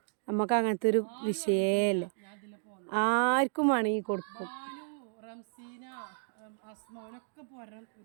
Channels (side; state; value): left; silent; digital silence